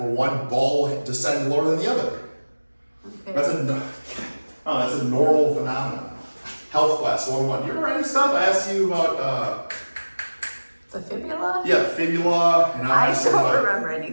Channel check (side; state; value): both; inverted; correlation -1.00